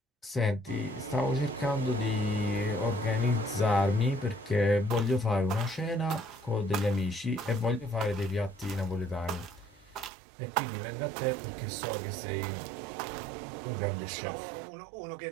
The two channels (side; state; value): left; drops out; at 10.1 s